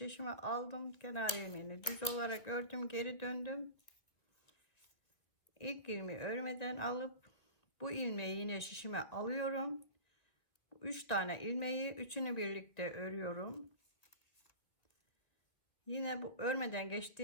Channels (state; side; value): late; right; 2.2 ms